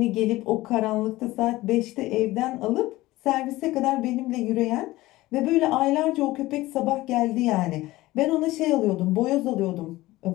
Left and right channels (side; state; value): right; quieter; 18.1 dB